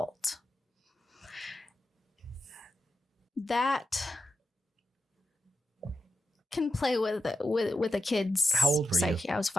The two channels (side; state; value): both; normal; correlation 0.89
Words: That can play with a kid's How old were psyche. you? I was